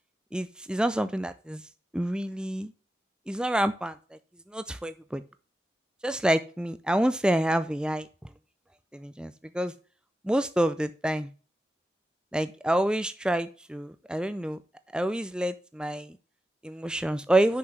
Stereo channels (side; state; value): both; normal; correlation 0.91